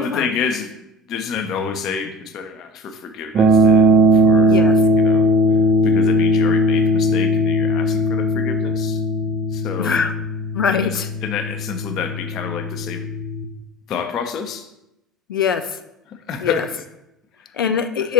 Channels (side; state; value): both; normal; correlation 0.38